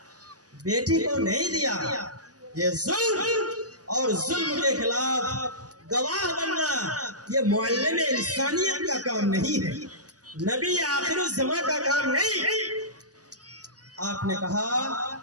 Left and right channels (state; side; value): late; left; 0.68 ms